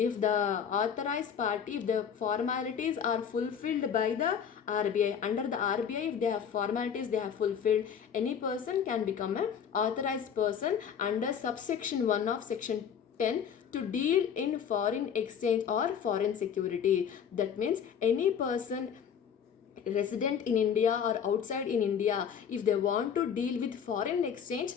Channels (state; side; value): quieter; right; 7.7 dB